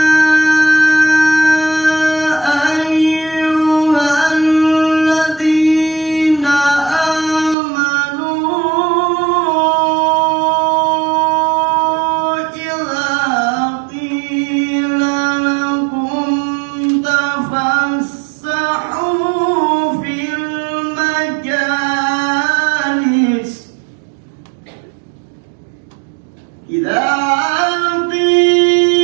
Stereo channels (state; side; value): drops out; left; at 7.6 s